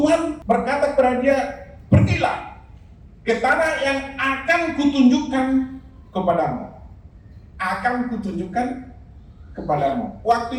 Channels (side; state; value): both; identical; correlation 1.00